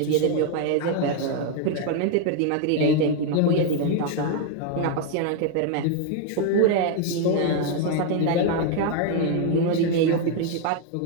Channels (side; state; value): both; different; correlation 0.01